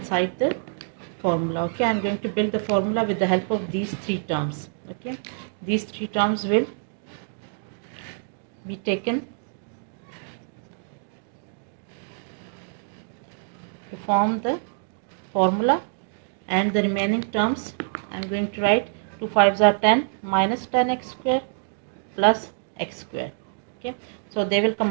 the formula. Okay, I'm going to build the formula with the help of these three terms. Okay, these three terms will be taken to form the formula, and the remaining terms I'm going to write 2 5s are 10 minus 10x square plus x square. Okay, so they will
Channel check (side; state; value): left; silent; digital silence